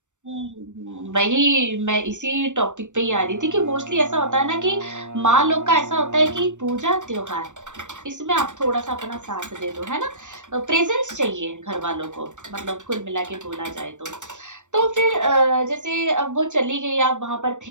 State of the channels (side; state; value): left; late; 0.85 ms